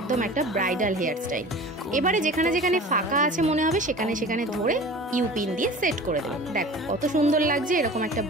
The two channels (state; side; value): normal; both; correlation 0.39